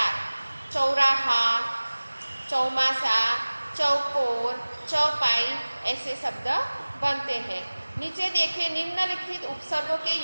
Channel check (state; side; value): inverted; both; correlation -1.00